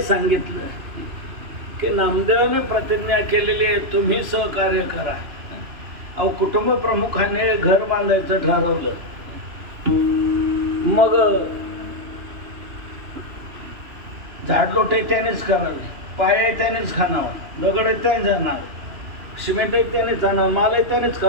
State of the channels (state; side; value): late; left; 3.0 ms